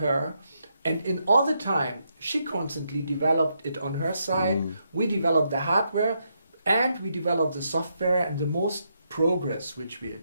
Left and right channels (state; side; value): inverted; both; correlation -0.80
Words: And in all the time, she constantly developed it on her side. We developed the hardware and we developed the software, and the most progress which we